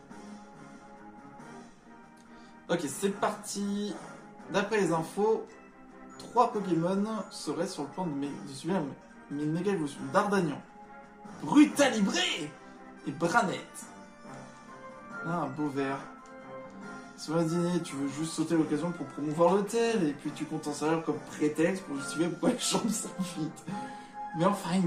Ok, c'est parti. D'après les infos, 3 Pokémon seraient sur le point de subir une méga évolution. Dardagnan, Brutalibré et Branette. Ah, un beau vert. Sur un dîner, tu veux juste sauter l'occasion pour promouvoir l'hôtel et puis tu comptes en servir comme prétexte pour justifier pourquoi les chambres sont vides. Mais enfin,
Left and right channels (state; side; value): identical; both; correlation 1.00